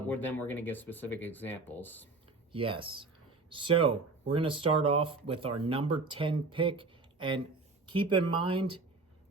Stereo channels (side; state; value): left; quieter; 3.6 dB